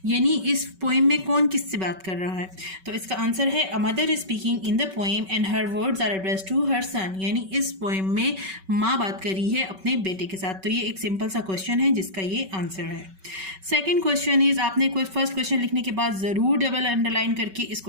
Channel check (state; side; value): late; left; 5.3 ms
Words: यानी इस poem में कौन किससे बात कर रहा है. तो इसका आंसर है, a mother is speaking in the poem and her words are addressed to her son, यानी इस पोएम में माँ बात कर रही है अपने बेटे के साथ. तो ये एक सिंपल सा क्वेश्चन है जिसका ये आंसर है. सेकेंड क्वेश्चन इज, आपने कोई फर्स्ट क्वेश्चन लिखने के बाद ज़रूर डबल अंडरलाइन करके